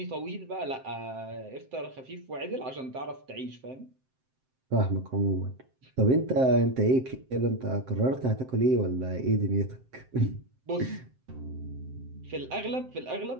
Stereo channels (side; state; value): left; late; 7.7 ms